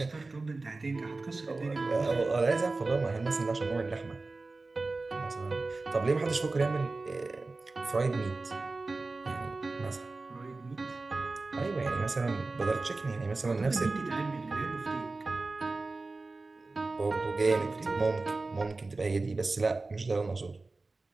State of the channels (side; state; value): left; quieter; 3.5 dB